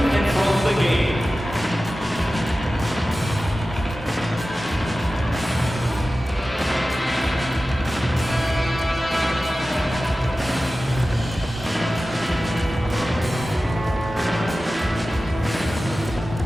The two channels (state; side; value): normal; both; correlation 0.95